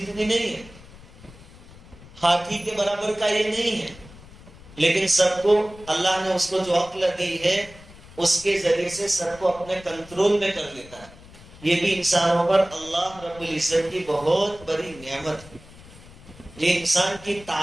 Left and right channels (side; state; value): left; noise; rumble, 20 dB below the sound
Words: نہیں ہے، ہاتھی کے برابر کا یہ نہیں ہے، لیکن سب کو اللہ نے اس کو جو عقل دی ہے اس کے ذریعے سے سب کو اپنے کنٹرول میں کر لیتا ہے۔ یہ بھی انسانوں پر اللہ رب العزت کی بہت بڑی نعمت ہے۔ یہ انسان کی